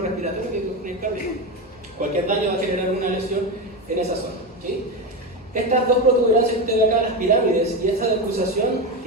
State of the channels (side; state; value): both; normal; correlation 0.16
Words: respiratorio que con el cardíaco. Cualquier daño va a generar una lesión en esa zona, ¿sí? Estas dos protuberancias que usted ve acá, las pirámides, y esa decusación